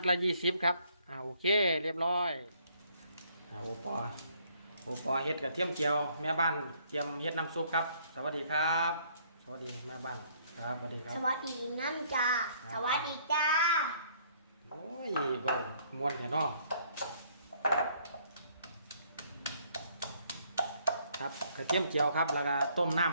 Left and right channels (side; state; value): both; inverted; correlation -0.64